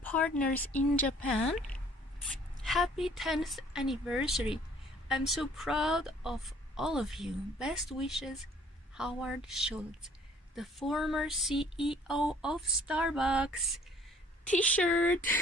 in Japan, happy 10th anniversary. I'm so proud of all of you. Best wishes, Howard Schulz, the former CEO of Starbucks. T-shirt,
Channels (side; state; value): both; normal; correlation 0.56